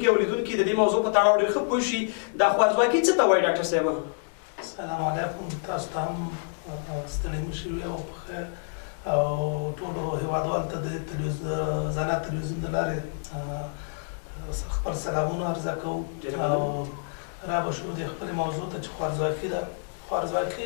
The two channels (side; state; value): right; silent; digital silence